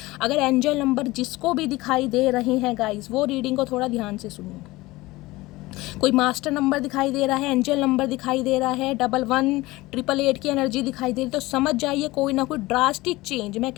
अगर एंजल नंबर जिसको भी दिखाई दे रहे हैं गाइस, वो रीडिंग को थोड़ा ध्यान से सुनिए। कोई मास्टर नंबर दिखाई दे रहा है, एंजल नंबर दिखाई दे रहा है, 11 888 की एनर्जी दिखाई दे रही, तो समझ जाइए कोई ना कोई ड्रास्टिक चेंज, मैं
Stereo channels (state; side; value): quieter; right; 19.9 dB